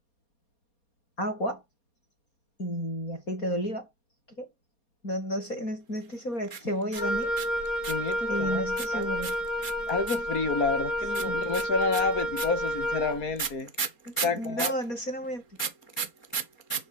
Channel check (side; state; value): right; late; 4.3 ms